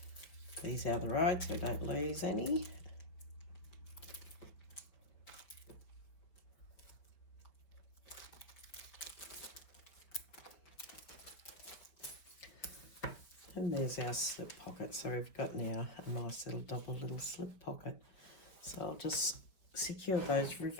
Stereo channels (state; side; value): late; right; 5.3 ms